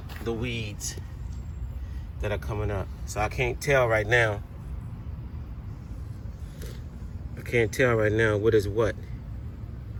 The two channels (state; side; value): identical; both; correlation 1.00